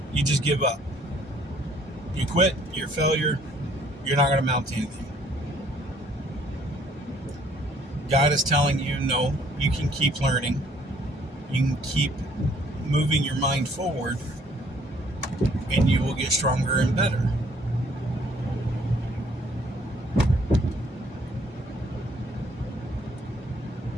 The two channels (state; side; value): normal; both; correlation 0.62